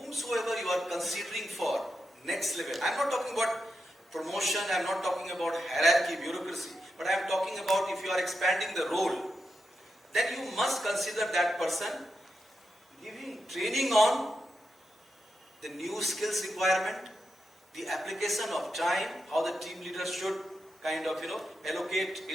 you are considering for next level, I am not talking about promotion, I am not talking about hierarchy, bureaucracy, but I am talking about if you are expanding the role, then you must consider that person giving training on the new skills requirement, the application of time, how the team leader should kind of allocate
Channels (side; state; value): both; normal; correlation 0.87